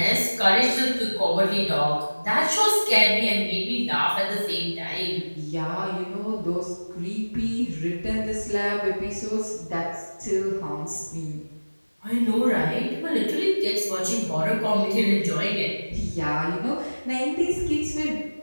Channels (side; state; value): both; inverted; correlation -1.00